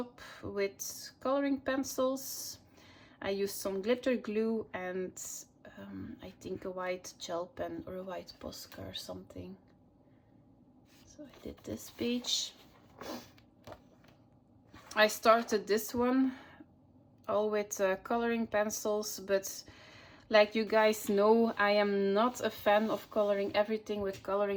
with coloring pencils. I used some glitter glue and I think a white gel pen or a white Posca or something. So I did this page. I started this one all with coloring pencils, but like you guys know, I am not a fan of coloring everything with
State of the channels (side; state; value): both; identical; correlation 1.00